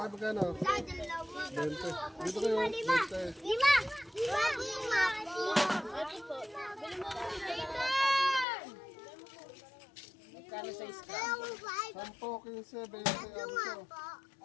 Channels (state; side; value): drops out; right; at 8.5 s